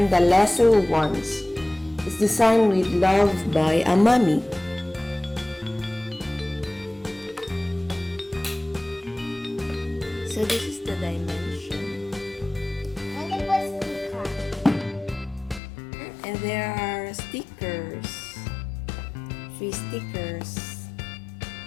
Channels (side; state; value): right; drops out; at 15.6 s